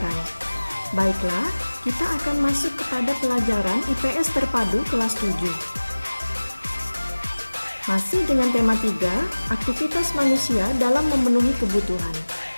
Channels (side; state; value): both; inverted; correlation -1.00